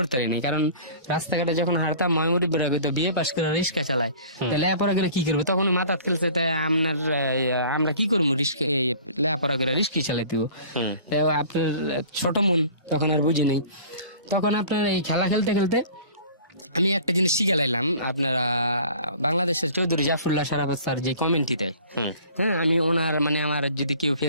পারি না, কারণ রাস্তাঘাটে যখন হারতাম ময়মুরি বেরোবে তো বিয়ে পাশ করে রিক্সা চালায়, লেখাপড়া করে কি করবো? তখন মাথা খেলছে, তাই আমরা কি করবো, লেখাপড়া করে রিস্কি চালাইতে। আপনার ছোট মন, তখন আর বুঝি নাই। তখন আপনার এই খেলা খেলতে খেলতে আমি একটা জিনিস শিখে লাইলাম, আপনারা বাংলাদেশের চৌধুরী জাফরুল্লাহ সারাফত স্যার যে কমেন্টটি দেয়, হ্যাঁ, আমি ওনার মানে আমার যদি কেউ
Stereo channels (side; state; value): both; inverted; correlation -0.47